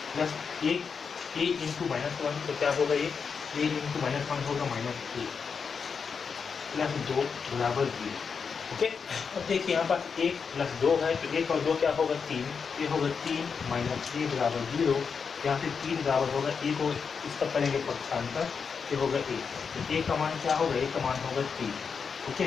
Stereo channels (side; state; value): right; quieter; 5.9 dB